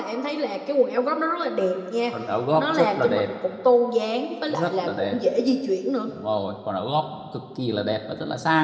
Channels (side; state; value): both; identical; correlation 1.00